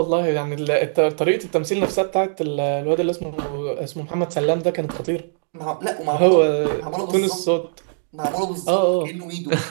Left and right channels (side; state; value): left; silent; digital silence